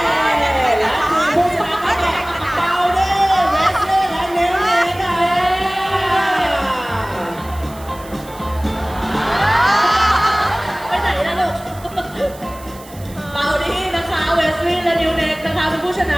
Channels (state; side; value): noise; right; hiss, 21 dB below the sound